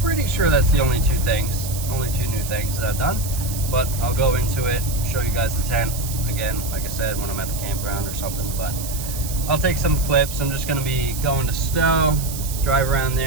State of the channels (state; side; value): noise; right; hiss, 9 dB below the sound